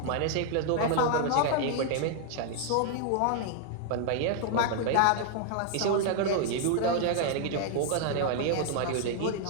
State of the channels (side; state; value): both; different; correlation 0.00